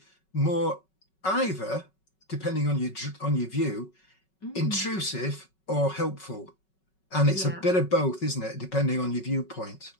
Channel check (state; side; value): late; right; 5.3 ms